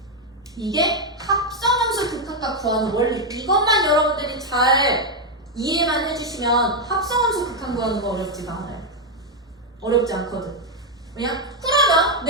이게 합성함수 극한값 구하는 원리. 이것만 여러분들이 잘 이해만 해주시면 합성함수 극한 구하는 거 어렵지가 않아요. 어렵지 않거든. 왜냐? 그러면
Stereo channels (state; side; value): normal; both; correlation 0.03